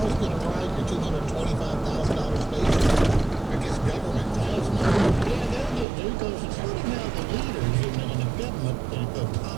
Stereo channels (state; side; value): drops out; left; at 5.9 s